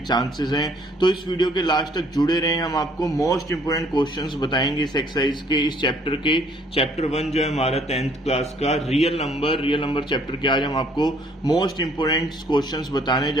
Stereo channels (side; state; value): both; normal; correlation 0.62